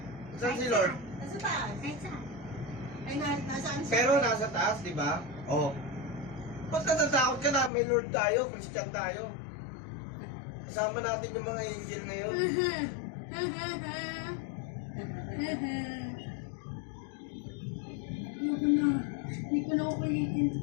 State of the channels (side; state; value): right; drops out; at 7.7 s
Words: Saan si Lord? Nasa taas. Kahit saan. Ay, nasaan siya? Pero nasa taas, di ba? Oo. Ba't natatakot ka na? May Lord tayo, Christian tayo. Kasama natin yung mga angel ngayon. Ayoko na. Hindi ko na ako kulitin.